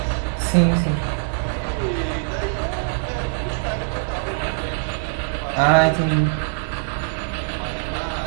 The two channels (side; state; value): left; silent; digital silence